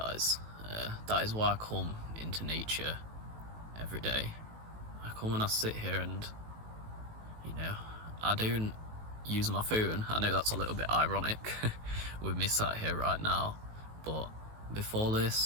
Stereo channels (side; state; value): left; late; 18 ms